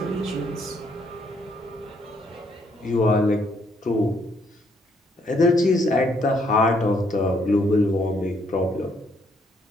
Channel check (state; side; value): normal; both; correlation 0.70